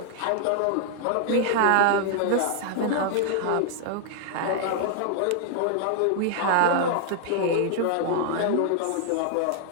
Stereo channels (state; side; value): different; both; correlation 0.00